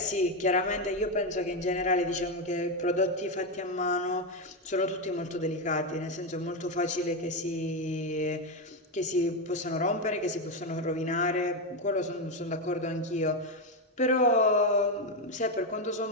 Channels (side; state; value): both; normal; correlation 0.07